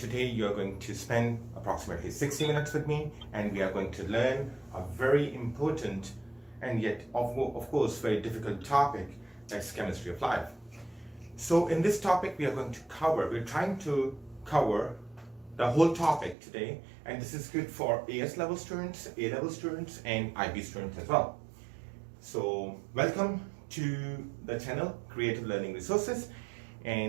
you're going to spend approximately 60 minutes with me and we are going to learn a very important and yet of course very difficult topic, that's chemistry of life. So in this topic we're trying to cover the whole topic today, and this is good for AS level students, A level students and IB students as well. So welcome to the channel Creative Learning Resources,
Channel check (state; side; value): drops out; left; at 16.4 s